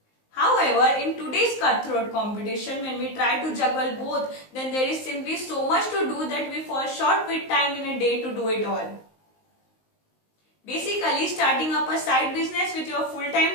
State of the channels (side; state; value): right; late; 19 ms